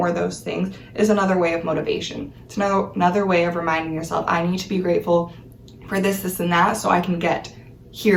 those things is another way of motivation. It's another way of reminding yourself, I need to be grateful for this, this, and that, so I can get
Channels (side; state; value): both; identical; correlation 1.00